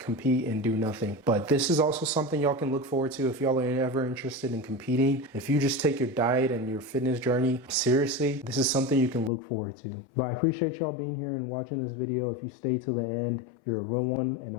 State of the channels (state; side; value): drops out; right; at 9.3 s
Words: and do nothing. But this is also something y'all can look forward to if y'all are ever interested in competing. If you just take your diet and your fitness journey seriously, this is something you can look forward to. But I appreciate y'all being here and watching this video. If you stay to the end, you're a real one, and